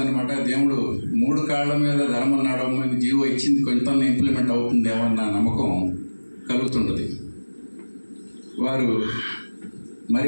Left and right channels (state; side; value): inverted; both; correlation -1.00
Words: దేవుడు 3 కాళ్ళ మీద ధర్మం నడవమని జీవో ఇచ్చింది, కొంత ఇంప్లిమెంట్ అవుతుందేమో అన్న నమ్మకం కలుగుతుంటుంది. వారు